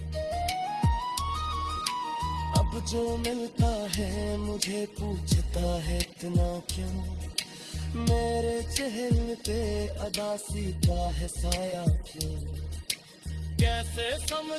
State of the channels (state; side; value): identical; both; correlation 1.00